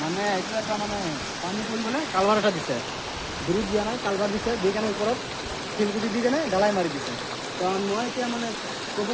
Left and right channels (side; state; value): both; identical; correlation 1.00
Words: মানে এইটো এটা মানে পানী পৰিবলৈ কালভাৰ এটা দিছে, ব্ৰিজ দিয়া নাই, কালভাৰ দিছে, দি কেনে ওপৰত শিলগুটি দি কেনে ঢালাই মাৰি দিছে। তো মই এতিয়া মানে ক'ব